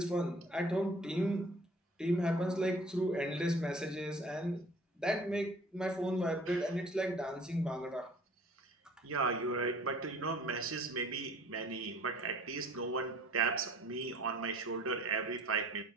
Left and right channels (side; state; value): both; normal; correlation 0.51